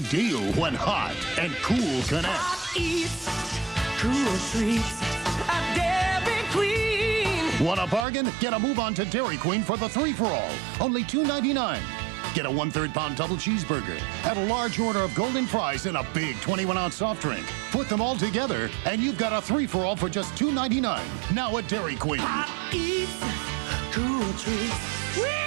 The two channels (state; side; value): drops out; left; at 8.1 s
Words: deal when hot and cool connect. Eats, cool treats, a Dairy Queen. Want a bargain? Get a move on to Dairy Queen for the 3-for-all. Only $2.99. Get a 1/3 pound double cheeseburger. Add a large order of golden fries and a big 21-ounce soft drink. Put them all together, and you've got a 3-for-all for just $2.99. Now at Dairy Queen. Hot eats, cool treats, we